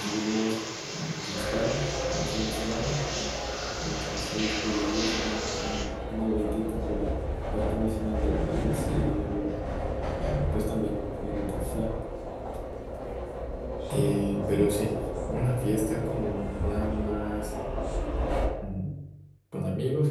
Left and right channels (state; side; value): identical; both; correlation 1.00